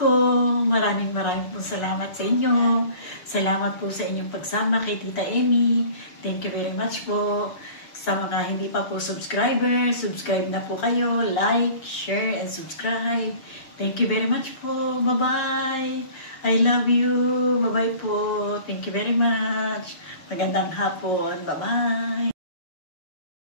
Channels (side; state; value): right; late; 6.8 ms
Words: maraming po salamat sa inyo. Salamat po sa inyong pagsama kay Tita Emmy. Thank you very much po. Sa mga hindi pa po subscriber, subscribe na po kayo. Like, share, and subscribe. Thank you very much po. Bye-bye. I love you. Bye-bye po. Thank you very much. Magandang hapon. Bye-bye.